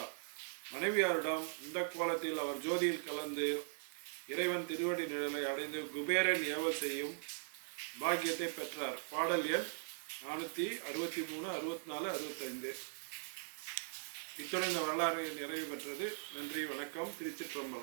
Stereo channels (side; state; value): left; silent; digital silence